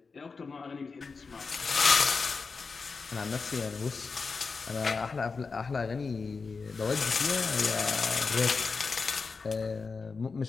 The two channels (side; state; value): right; quieter; 4.7 dB